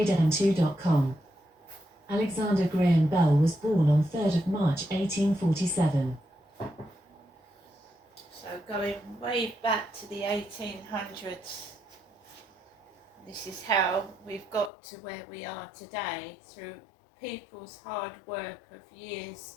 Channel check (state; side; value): drops out; right; at 14.7 s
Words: Alexander Graham Bell was born on 3rd of March 1847. So going way back to the 1800s. This is how we've got to where we are today, through people's hard work of years